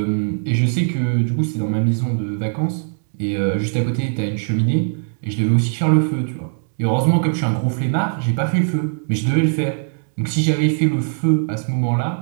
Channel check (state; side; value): silent; left; digital silence